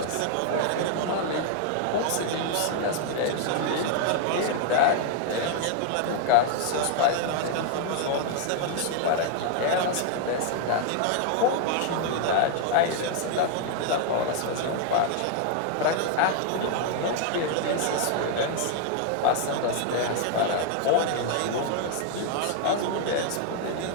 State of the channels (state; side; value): different; both; correlation 0.00